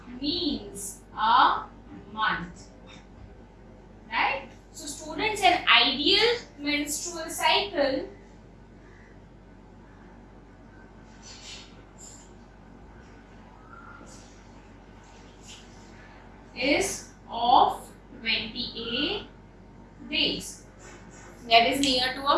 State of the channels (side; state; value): both; identical; correlation 1.00